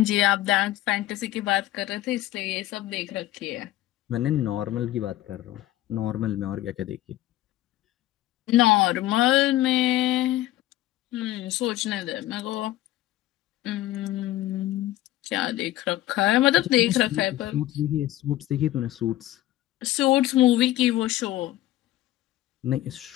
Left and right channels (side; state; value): right; quieter; 15.2 dB